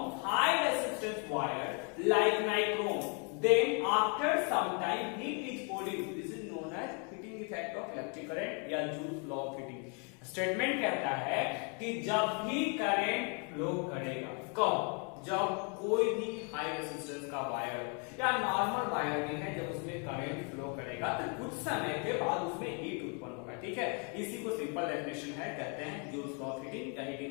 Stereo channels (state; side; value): quieter; right; 37.3 dB